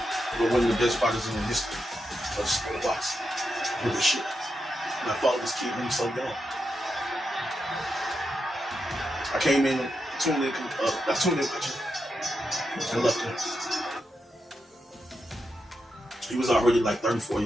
But one of the best fighters in the history of the sport of boxing. Really shit. And I followed this kid when he was so young. I came in, tuned in watching, and left him. He was already like 34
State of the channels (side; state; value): both; normal; correlation 0.86